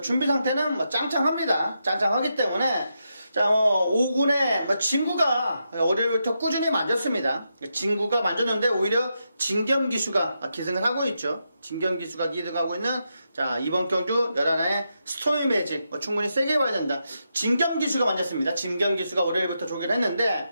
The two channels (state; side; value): inverted; both; correlation -0.84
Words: 준비 상태는 뭐 짱짱합니다. 짱짱하기 때문에 자, 5군의 진구가 월요일부터 꾸준히 만졌습니다. 진구가 만졌는데 오히려 진겸기수가 기승을 하고 있죠. 진겸기수가 기승하고 있는 자 이번 경주 11화의 스토미 매직 충분히 세게 봐야 된다. 진겸기수가 만졌습니다. 진겸기수가 월요일부터 조기를